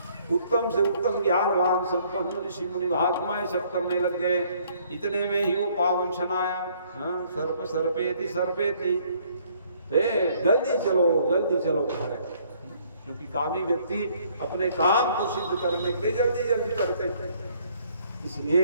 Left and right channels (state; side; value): inverted; both; correlation -0.63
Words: उत्तम से उत्तम ज्ञानवान संपन्न ऋषि मुनि महात्माएं सब करने लग गए। इतने में ही वो पावन क्षण आया, सर्प सर्पेति सर्पेति, जल्दी चलो घर, क्योंकि कामी व्यक्ति अपने काम को सिद्ध करने के लिए जल्दी जल्दी करते थे। इसलिए